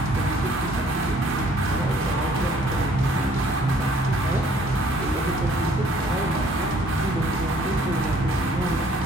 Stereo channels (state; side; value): normal; both; correlation 0.59